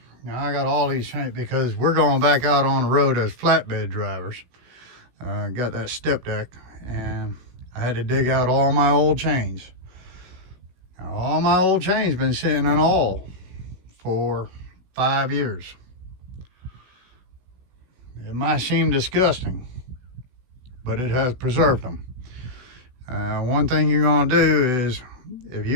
Now I got all these chains because we're going back out on the road as flatbed drivers. Got that step deck and I had to dig out all my old chains. Now, all my old chains been sitting in all for 5 years. It might seem disgusting, but it has preserved them. One thing you're gonna do is, if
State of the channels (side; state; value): left; late; 16 ms